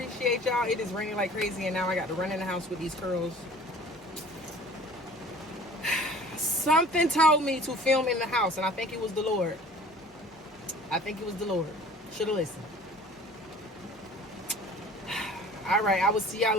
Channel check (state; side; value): normal; both; correlation 0.47